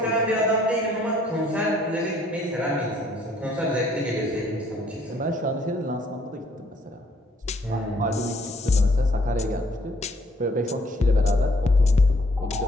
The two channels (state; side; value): normal; both; correlation 0.64